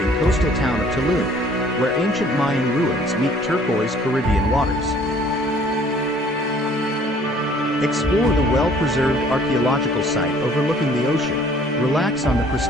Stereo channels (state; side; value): normal; both; correlation 0.57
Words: coastal town of Tulum, where ancient Mayan ruins meet turquoise Caribbean waters. Explore the well-preserved archaeological site overlooking the ocean, relax on the